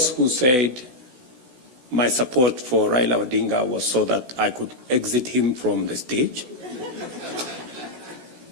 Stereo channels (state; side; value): late; left; 16 ms